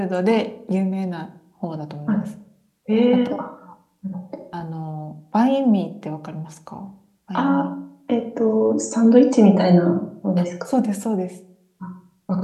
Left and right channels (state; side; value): identical; both; correlation 1.00